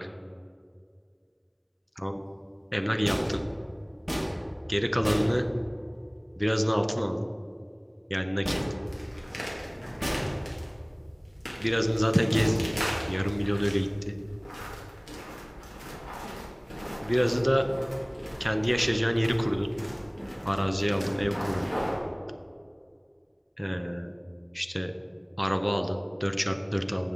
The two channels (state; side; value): identical; both; correlation 1.00